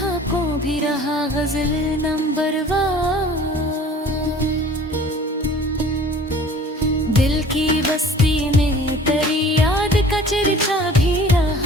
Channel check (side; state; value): both; normal; correlation 0.47